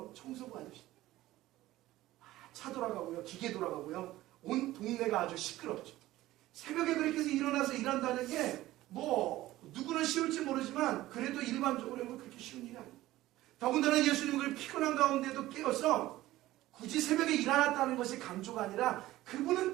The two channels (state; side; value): quieter; left; 16.2 dB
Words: 청소부 아저씨. 차 돌아가고요, 기계 돌아가고요, 온 동네가 아주 시끄럽죠. 새벽에 그렇게 해서 일어나서 일한다는 게 뭐 누구는 쉬울지 모르지만 그래도 일반적으로는 그렇게 쉬운 일이 아니에요. 더군다나 예수님은 그 피곤한 가운데도 깨어서 굳이 새벽에 일어났다는 것이 강조가 아니라 그분은